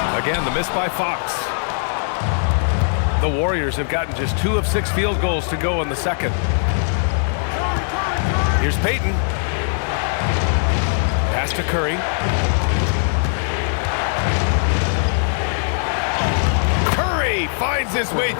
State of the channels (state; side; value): silent; right; 66 dB below the other